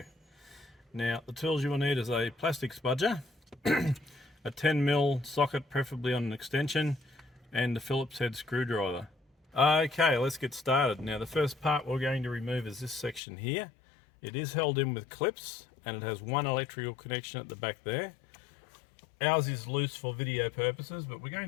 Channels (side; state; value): right; drops out; at 13.2 s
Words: Now the tools you will need is a plastic spudger, a 10mm socket preferably on an extension, and a Phillips head screwdriver. Okay, let's get started. Now the first part we're going to remove is this section here. It is held in with clips and it has one electrical connection at the back there. Ours is loose for video purposes, but we're